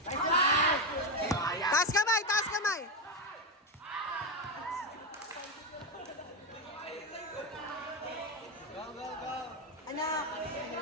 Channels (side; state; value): both; normal; correlation 0.10